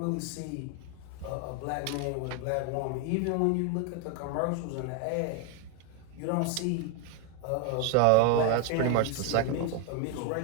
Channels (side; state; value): both; different; correlation 0.02